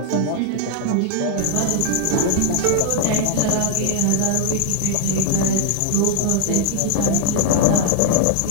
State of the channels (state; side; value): different; both; correlation 0.00